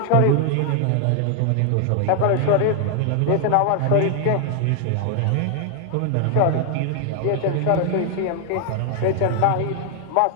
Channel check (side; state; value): both; different; correlation 0.00